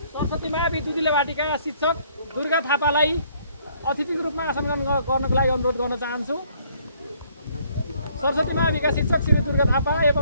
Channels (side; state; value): both; inverted; correlation -0.64